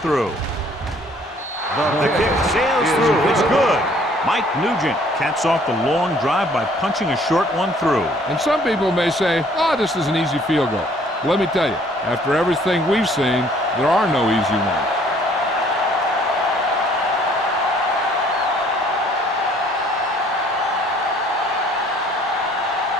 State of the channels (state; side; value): normal; both; correlation 0.59